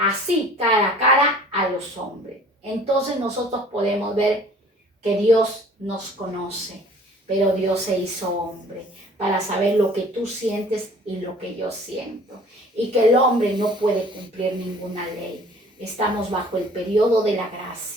cara a cara a los hombres. Entonces nosotros podemos ver que Dios nos conoce, pero Dios se hizo hombre para saber lo que tú sientes y lo que yo siento. Y que el hombre no puede cumplir ninguna ley. Estamos bajo el periodo de la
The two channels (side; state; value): both; normal; correlation 0.51